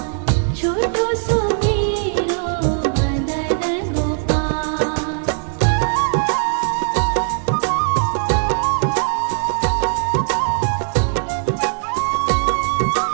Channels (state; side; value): silent; left; 63 dB below the other